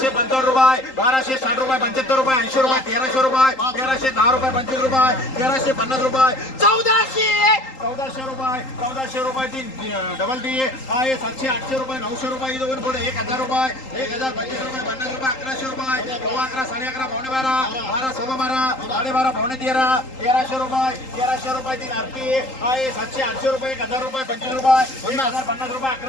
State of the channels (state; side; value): late; right; 3.8 ms